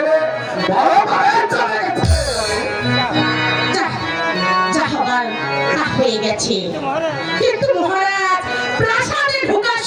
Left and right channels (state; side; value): identical; both; correlation 1.00